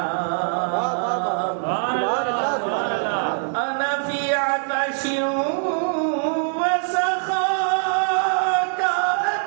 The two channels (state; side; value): silent; left; 64 dB below the other